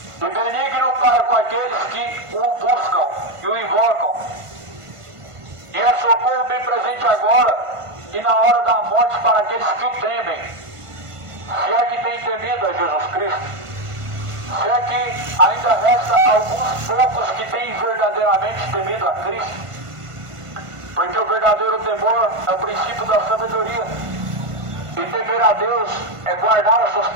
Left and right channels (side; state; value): left; late; 1.5 ms